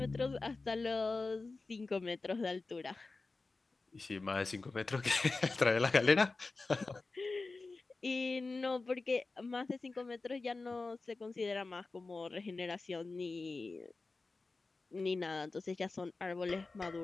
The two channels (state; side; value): quieter; right; 3.7 dB